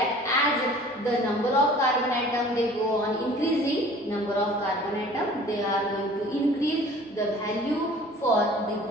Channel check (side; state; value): both; normal; correlation 0.48